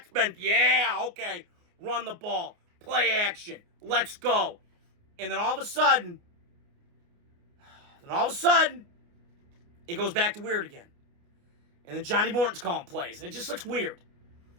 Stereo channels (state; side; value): late; left; 29 ms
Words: run the ball, play action, let's go. And then all of a sudden, it goes back to weird again. And then Johnny Morton's calling plays, and it just looks weird.